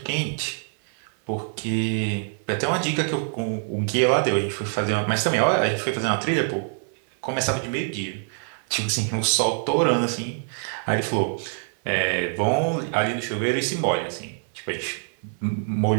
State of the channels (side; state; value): left; silent; 56 dB below the other